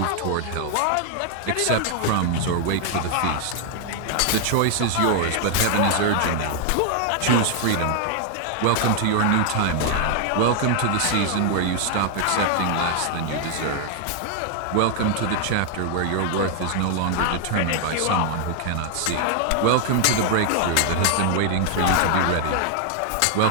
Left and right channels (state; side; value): different; both; correlation 0.00